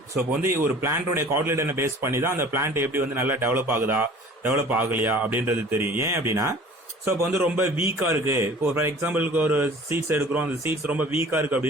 ஸோ இப்போ வந்து ஒரு பிளான்டோட கார்டிலேடனை base பண்ணி தான் அந்த பிளான்ட் எப்படி வந்து நல்லா டெவலப் ஆகுதா டெவலப் ஆகலையா அப்படின்றது தெரியும். ஏன் அப்படின்னா ஸோ இப்போ வந்து ரொம்ப வீக்கா இருக்கு, இப்போ ஃபார் எக்ஸாம்பிளுக்கு ஒரு சீட்ஸ் எடுக்கிறோம், அந்த சீட்ஸ் ரொம்ப வீக்கா இருக்கு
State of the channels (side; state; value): both; normal; correlation 0.46